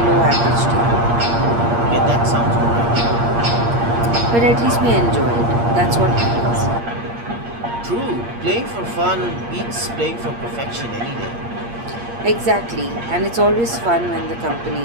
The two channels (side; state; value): left; late; 8.6 ms